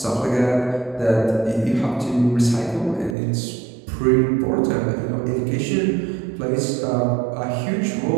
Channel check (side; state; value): left; drops out; at 3.2 s